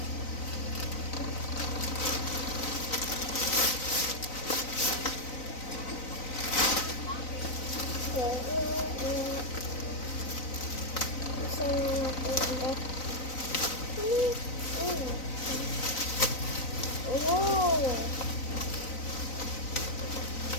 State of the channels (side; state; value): right; late; 3.9 ms